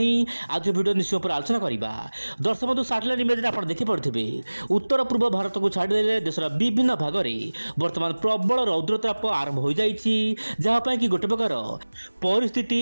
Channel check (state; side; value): inverted; both; correlation -1.00